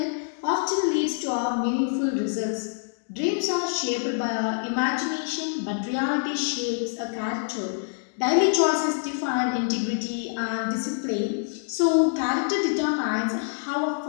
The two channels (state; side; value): silent; right; digital silence